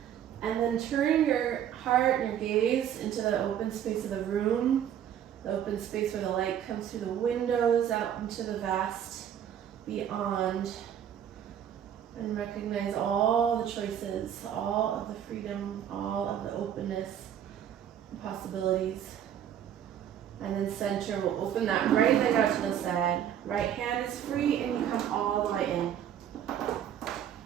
And then turn your heart and your gaze into the open space of the room, the open space where the light comes through the windows out into the vast beyond, and recognize all the choices, all of the freedom, all of the openness and possibilities. And then center, we'll open that right leg out to the side. Right hand is free and you come all the way in.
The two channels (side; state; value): left; quieter; 9.7 dB